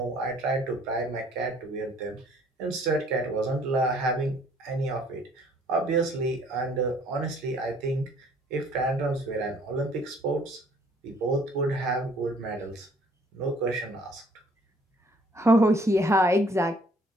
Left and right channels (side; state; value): both; normal; correlation 0.59